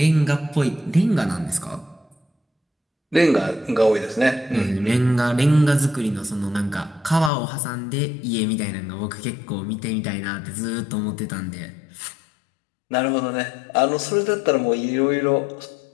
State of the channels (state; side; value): drops out; right; at 7.3 s